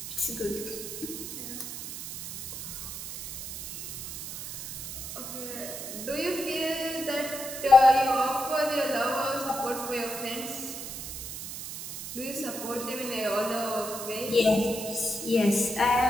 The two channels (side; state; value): right; noise; hiss, 8 dB below the sound